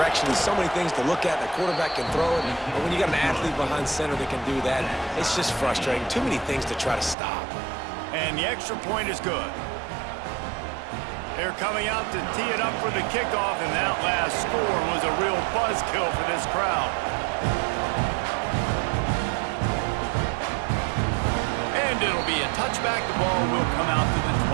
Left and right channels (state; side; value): drops out; left; at 7.2 s